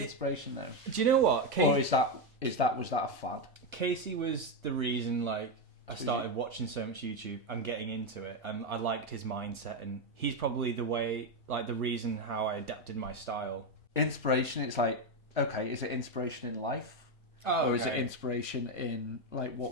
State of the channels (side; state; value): both; normal; correlation 0.08